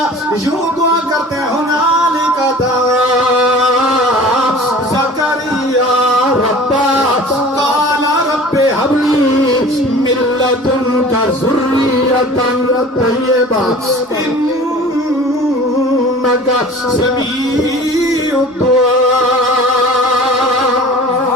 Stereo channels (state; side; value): normal; both; correlation 0.42